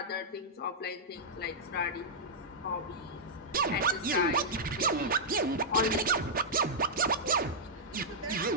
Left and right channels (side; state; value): both; normal; correlation -0.09